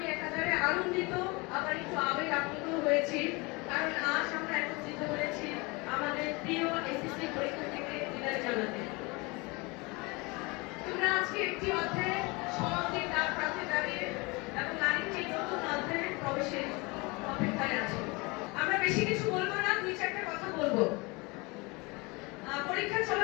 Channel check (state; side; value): quieter; right; 26.4 dB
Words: একাধারে আনন্দিত আবার একটু আবেগ আপ্লুত হয়েছি, কারণ আজ আমরা একত্রিত হয়েছি আমাদের প্রিয় এসএসসি পরীক্ষার্থীকে বিদায় জানাতে। তোমরা আজকে একটি অধ্যায়ে সমাপ্তির দ্বার প্রান্তে দাঁড়িয়ে এবং আরেকটি নতুন অধ্যায়ে প্রবেশের অপেক্ষায় আছো। আমরা বেশি কিছু বলবো না, দুই চারটা কথা বলবো। পরীক্ষা